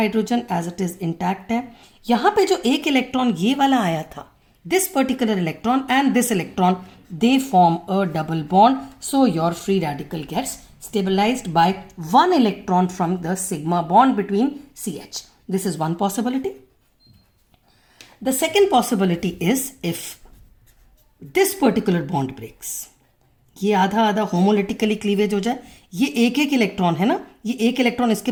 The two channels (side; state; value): both; identical; correlation 1.00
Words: as it is intact है. यहां पे जो एक इलेक्ट्रॉन ये वाला आया था, this particular electron and this electron, they form a double bond. So your free radical gets stabilized by 1 electron from the sigma bond between CH. This is one possibility. The second possibility is if this particular bond breaks. ये आधा आधा homolytically cleavage हो जाए, ये एक एक electron है ना, ये एक इलेक्ट्रॉन इसके